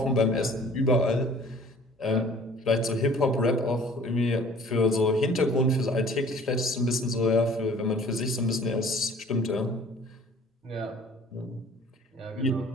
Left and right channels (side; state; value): both; normal; correlation 0.51